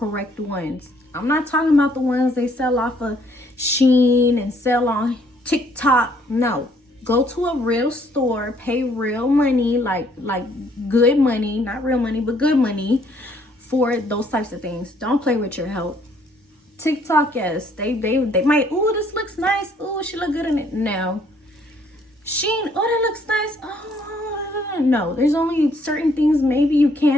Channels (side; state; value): both; normal; correlation 0.65